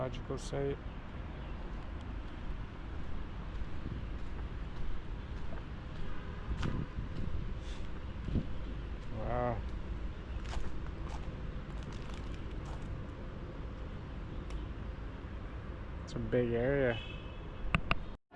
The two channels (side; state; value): both; identical; correlation 1.00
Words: site. Wow. It's a big area.